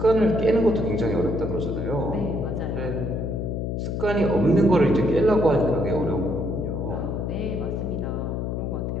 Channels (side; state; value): left; noise; hum, 2 dB below the sound